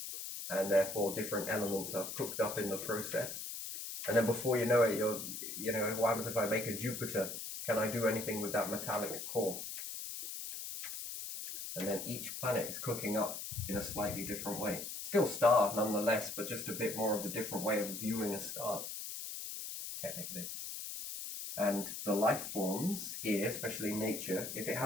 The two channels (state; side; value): noise; left; hiss, 7 dB below the sound